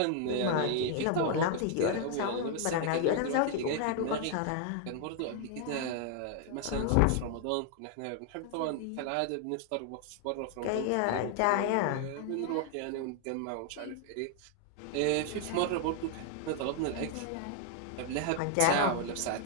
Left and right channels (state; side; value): different; both; correlation 0.00